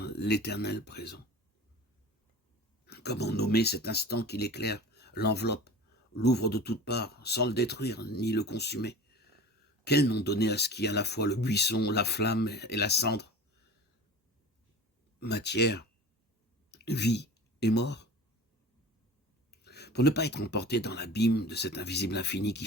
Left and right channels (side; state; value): both; normal; correlation 0.36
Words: l'éternel présent. Comment nommer cet instant qui l'éclaire, l'enveloppe, l'ouvre de toutes parts, sans le détruire ni le consumer? Quel nom donner à ce qui est à la fois le buisson, la flamme et la cendre? Matière, vie et mort? Pour ne pas être emporté dans l'abîme de cet invisible infini qui